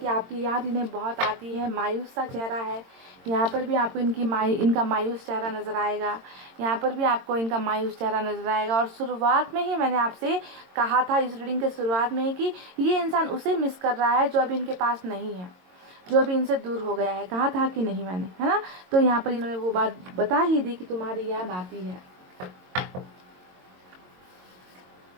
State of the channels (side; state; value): left; late; 22 ms